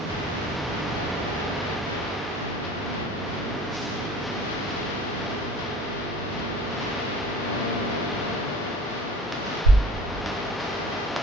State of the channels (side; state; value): both; normal; correlation 0.45